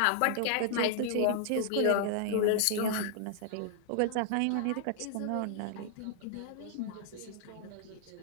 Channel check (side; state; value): both; different; correlation -0.01